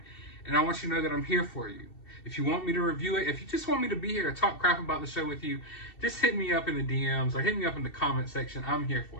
And I want you to know that I'm here for you. If you want me to review it, if you just want me to be here to talk crap about the show with you, just hit me up in the DMs or hit me up in the comment section. I'm here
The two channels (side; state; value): right; late; 2.7 ms